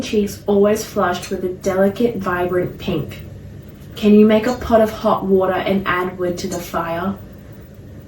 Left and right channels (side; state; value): both; identical; correlation 1.00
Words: cheeks always flushed with a delicate, vibrant pink. "Can you make a pot of hot water and add wood to the fire?"